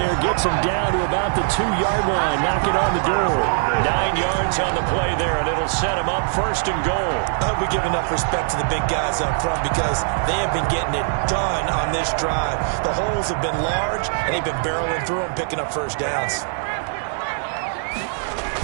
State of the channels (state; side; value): silent; left; digital silence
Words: Gets them down to about the 2-yard line. Knock it on the door. 9 yards on the play there, and it'll set them up 1st and goal. I hope we give enough respect to the big guys up front, because they have been getting it done on this drive. The holes have been large, and they've been barreling through them, picking up 1st downs.